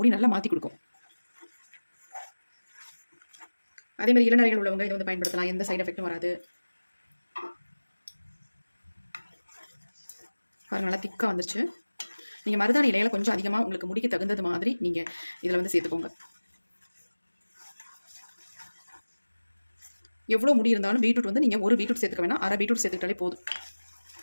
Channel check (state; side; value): inverted; both; correlation -1.00